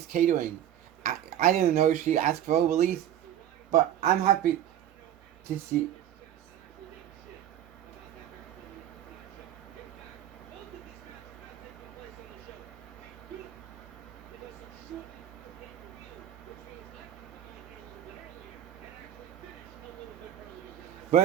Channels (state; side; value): quieter; left; 11.2 dB